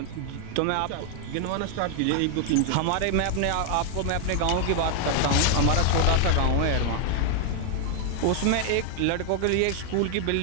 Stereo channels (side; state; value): both; different; correlation 0.00